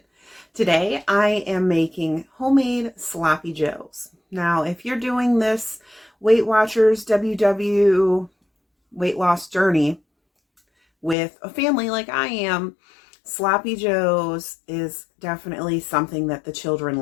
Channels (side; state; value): right; drops out; at 11.2 s